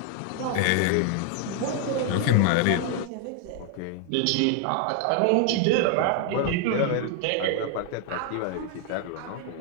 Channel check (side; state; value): both; different; correlation 0.00